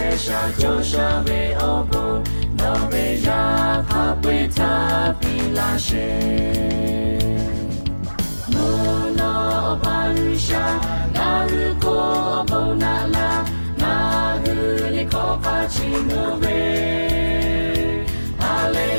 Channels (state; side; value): inverted; both; correlation -1.00